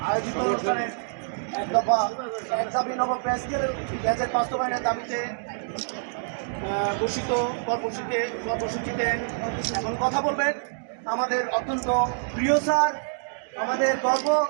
আয়োজিত অনুষ্ঠানের এক দফা এক দাবি নব প্রেস গ্যাজেট বাস্তবায়নের দাবিতে ঘোষিত কর্মসূচিতে এখন কথা বলবেন আমাদের অত্যন্ত প্রিয় স্যার, আমাদের গর্ব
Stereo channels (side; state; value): left; silent; digital silence